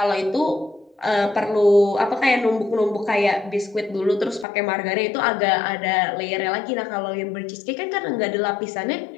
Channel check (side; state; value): right; drops out; at 4.5 s